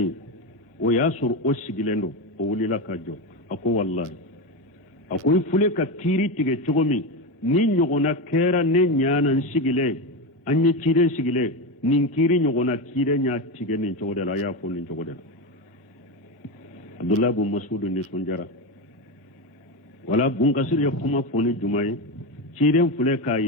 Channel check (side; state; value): both; normal; correlation 0.15